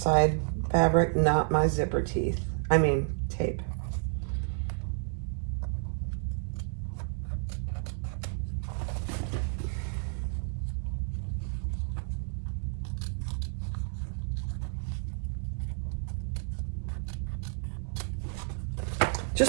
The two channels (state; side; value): silent; left; 57 dB below the other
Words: fabric, not my zipper teeth. I mean, tape.